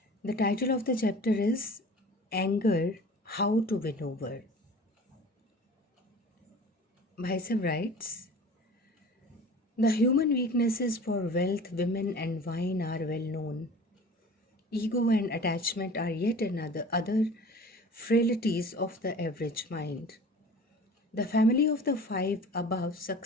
The title of the chapter is Anger, How to Win Over. Bhaisa writes, the human weaknesses for wealth, women and wine are well known. Ego and attachment are yet another other frailties of the average mind. The family of the five above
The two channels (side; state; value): both; normal; correlation 0.41